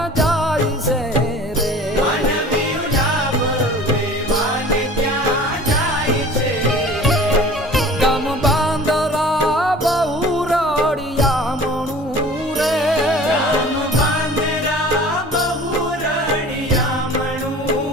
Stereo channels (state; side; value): normal; both; correlation 0.44